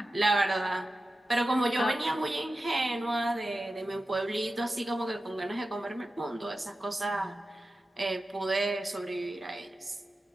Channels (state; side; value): normal; both; correlation 0.93